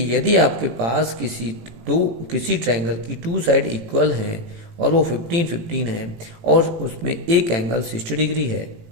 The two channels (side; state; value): left; late; 18 ms